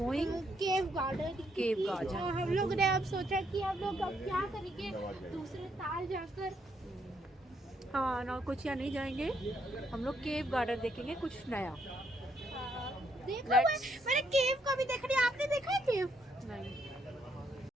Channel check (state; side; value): normal; both; correlation 0.73